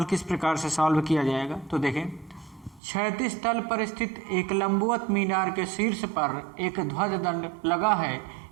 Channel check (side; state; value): left; drops out; at 2.8 s